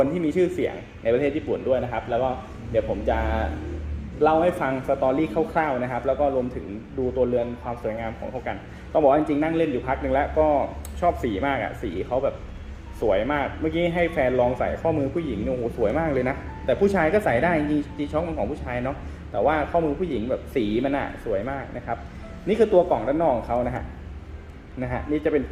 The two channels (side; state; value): both; identical; correlation 1.00